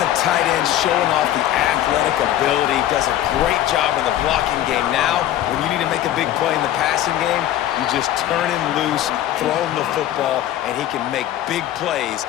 the tight end showing off the athletic ability? Does a great job in the blocking game. Now, when you need to make a big play in the passing game, you just turn him loose, throw him the football, and he can make big plays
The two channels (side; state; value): right; quieter; 12.6 dB